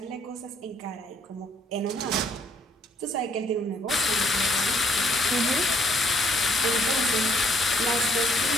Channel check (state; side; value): normal; both; correlation 0.66